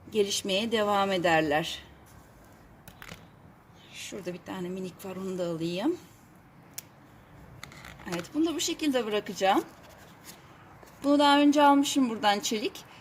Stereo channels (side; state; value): both; identical; correlation 1.00